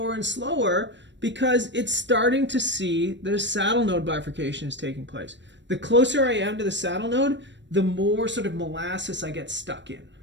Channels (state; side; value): late; left; 0.53 ms